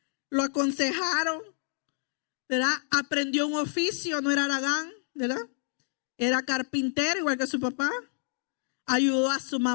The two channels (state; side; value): silent; right; digital silence